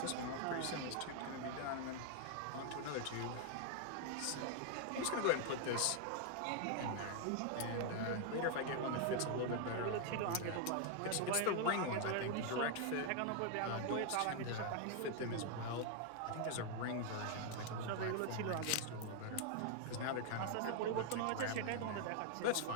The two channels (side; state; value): both; different; correlation 0.00